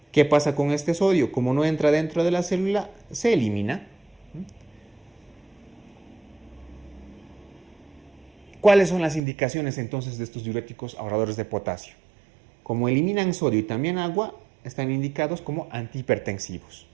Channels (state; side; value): drops out; left; at 9.2 s